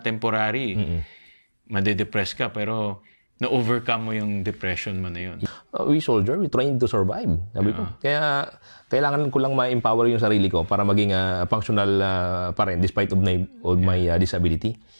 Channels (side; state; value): both; inverted; correlation -1.00